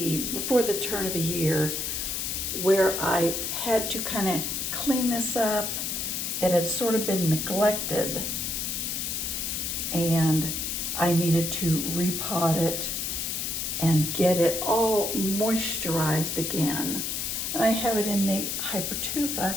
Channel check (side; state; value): left; noise; hiss, 2 dB below the sound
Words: before the turn of the year, where I had to kind of clean this up. It had sort of been neglected and I needed to repot it and get it all moisturized again. And I have it in the